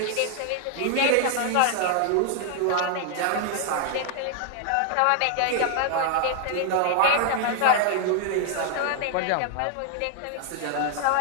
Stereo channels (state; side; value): different; both; correlation 0.00